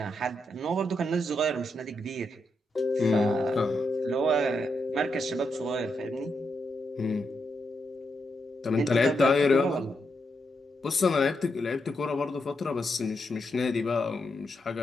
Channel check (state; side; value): normal; both; correlation 0.82